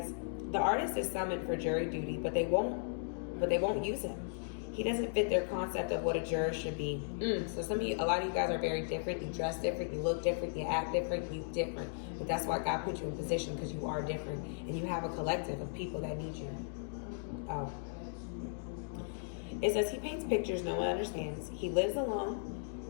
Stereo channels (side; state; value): right; silent; digital silence